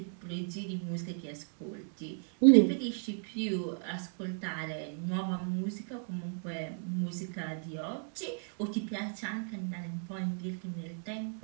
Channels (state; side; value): silent; left; 55 dB below the other